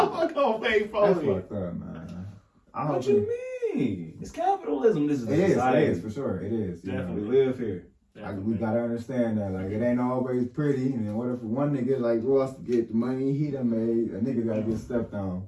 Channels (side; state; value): both; identical; correlation 1.00